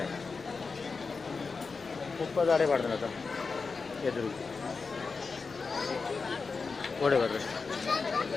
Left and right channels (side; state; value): right; quieter; 4.6 dB